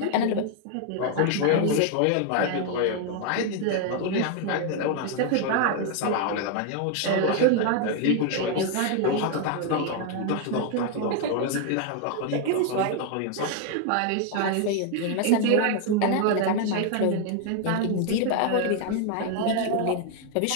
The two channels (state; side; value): different; both; correlation 0.00